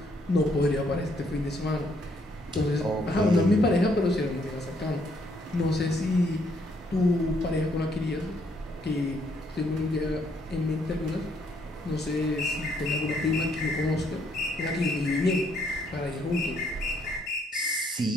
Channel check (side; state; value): both; normal; correlation 0.70